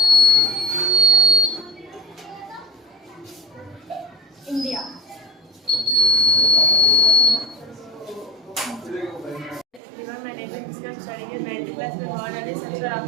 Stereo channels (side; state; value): left; drops out; at 9.8 s